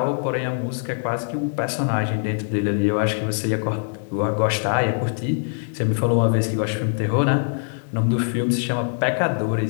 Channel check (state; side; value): silent; right; digital silence